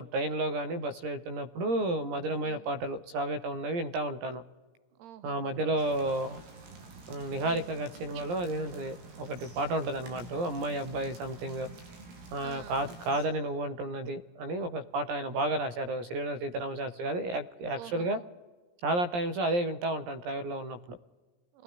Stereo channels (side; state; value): left; late; 17 ms